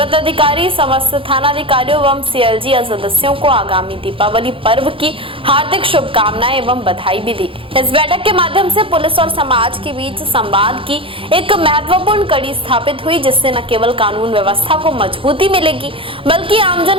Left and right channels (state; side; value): late; left; 0.26 ms